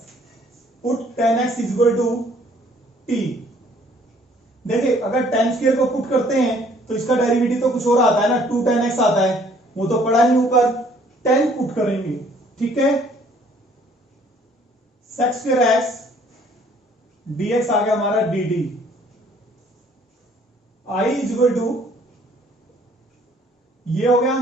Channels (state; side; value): normal; both; correlation 0.60